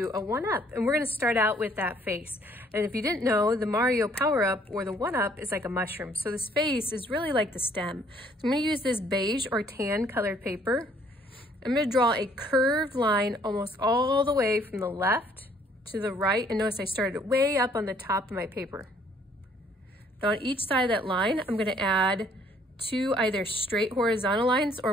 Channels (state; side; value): normal; both; correlation 0.62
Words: a one-up. And we're going to start out with that face. And if you didn't know, the Mario power-up or the one-up is like a mushroom. So this face is really like the stem. So I'm going to use this beige or tan colored paper. I'm going to draw a curved line almost all the way from the left to the right. And notice I started way up on the top of my paper. Now on each side of that line, I'm going to add two either straight horizontal lines